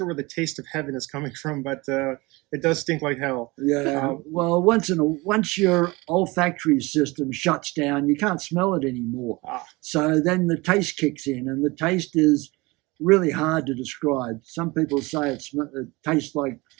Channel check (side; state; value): left; quieter; 23.7 dB